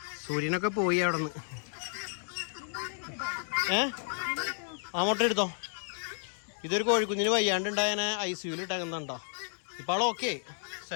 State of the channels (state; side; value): silent; right; digital silence